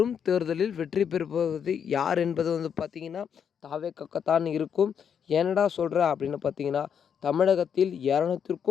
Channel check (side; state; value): right; quieter; 7.7 dB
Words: தேர்தலில் வெற்றி பெறுவது யார் என்பது பார்த்திங்கன்னா தாவேக்காத்தான் இருக்கும். ஏனடா சொல்கிற அப்படின்னு பார்த்திங்கன்னா, தமிழகத்தில்